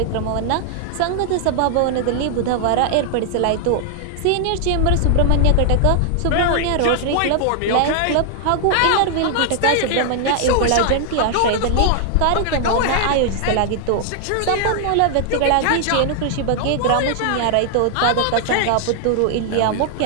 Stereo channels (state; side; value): different; both; correlation 0.00